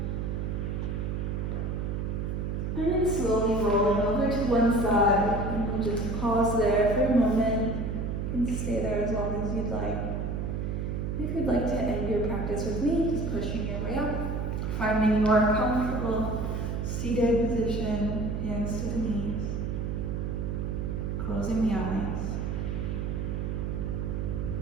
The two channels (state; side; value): noise; right; hum, 2 dB below the sound